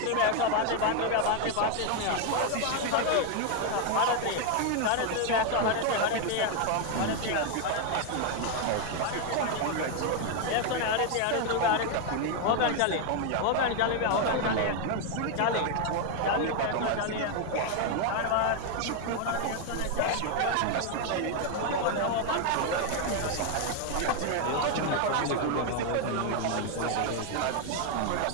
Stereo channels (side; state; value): both; different; correlation 0.01